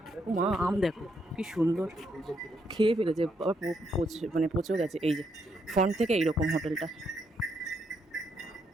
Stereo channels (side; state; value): both; normal; correlation 0.76